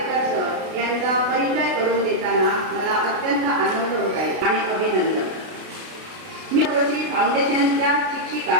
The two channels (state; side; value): late; left; 32 ms